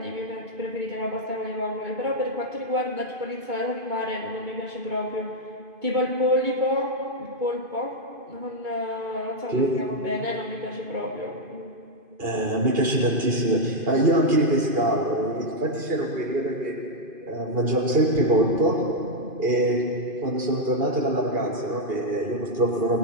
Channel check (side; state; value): left; late; 2.5 ms